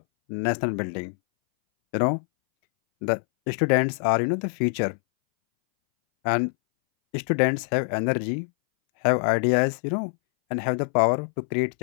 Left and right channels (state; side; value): silent; right; 61 dB below the other